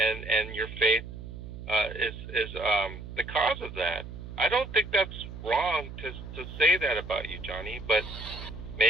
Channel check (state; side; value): noise; right; hum, 11 dB below the sound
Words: your faith is the cause of that. I don't think that's wrong to say that about you, Johnny, but